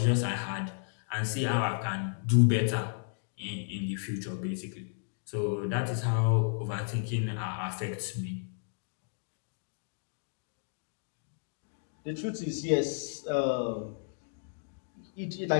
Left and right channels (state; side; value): silent; right; digital silence